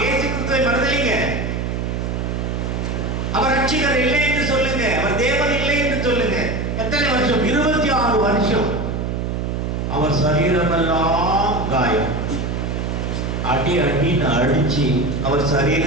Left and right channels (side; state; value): right; noise; hum, 2 dB below the sound